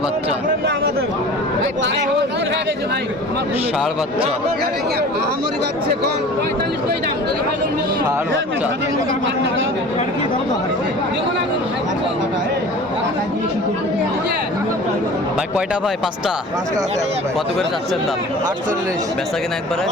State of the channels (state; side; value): normal; both; correlation 0.41